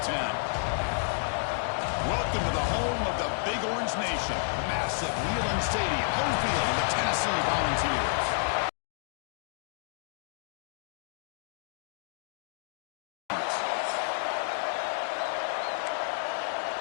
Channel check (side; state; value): right; silent; digital silence